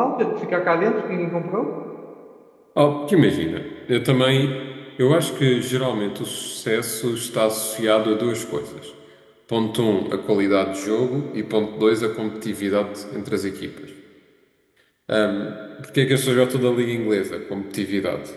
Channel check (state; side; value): identical; both; correlation 1.00